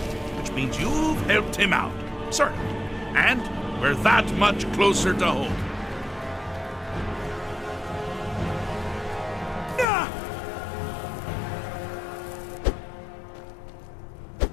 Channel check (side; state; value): right; drops out; at 9.9 s